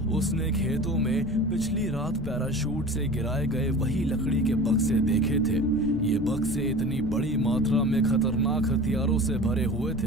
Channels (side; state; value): left; noise; rumble, 9 dB below the sound